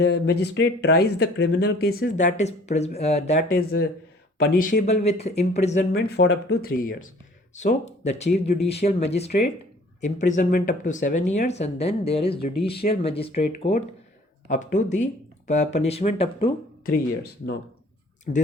tries the criminal cases that is punishable with imprisonment for up to 3 years. So the chief judicial magistrate, imprisonment up to 7 years, and then there is judicial magistrate court up to the punishment up to 3 years. Now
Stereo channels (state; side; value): normal; both; correlation 0.53